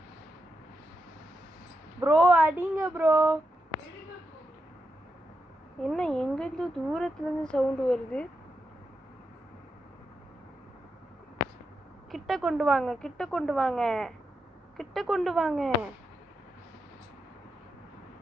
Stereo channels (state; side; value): normal; both; correlation 0.85